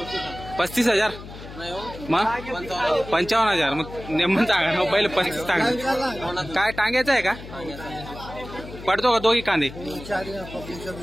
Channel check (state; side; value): noise; left; hum, 14 dB below the sound